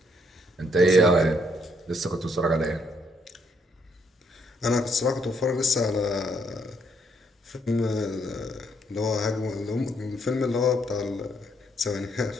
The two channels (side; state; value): both; normal; correlation 0.71